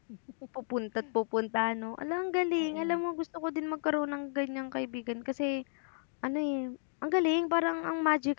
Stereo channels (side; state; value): right; silent; digital silence